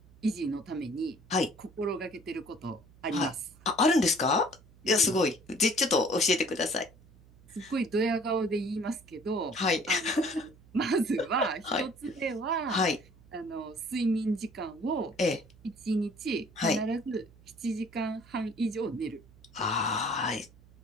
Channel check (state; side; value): noise; right; hum, 25 dB below the sound